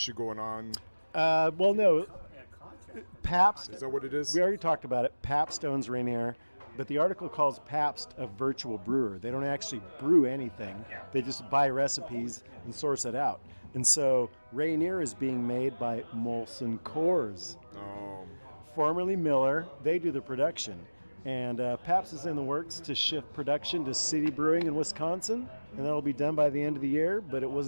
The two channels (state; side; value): inverted; both; correlation -1.00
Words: going on. Well, no. Pabst. Is that what it is? We already talked about it. Pabst owns Rainier, but the article calls Pabst a virtual brewer. They don't actually brew anything. They just buy recipes and source it out. And so Rainier is being made by Molson Coors, Oh. formerly Miller. They do the production. And Pabst is in the works to shift production to City Brewing in Wisconsin, and that'll be done by the end of the year, but it